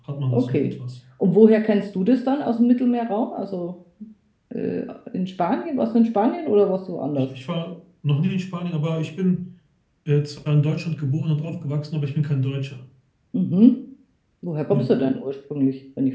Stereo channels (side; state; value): both; identical; correlation 1.00